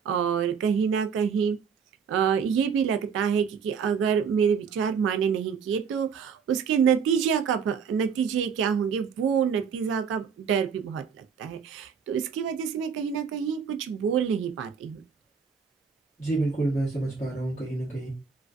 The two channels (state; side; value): quieter; left; 6.5 dB